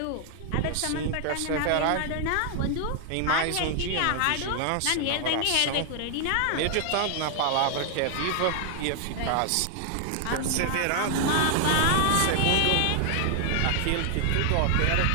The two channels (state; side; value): different; both; correlation 0.00